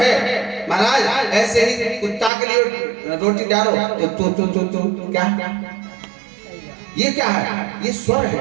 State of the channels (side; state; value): left; drops out; at 2.3 s